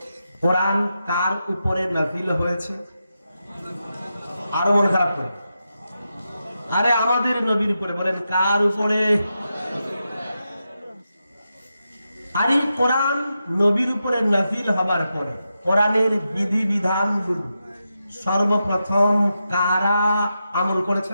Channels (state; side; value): inverted; both; correlation -0.88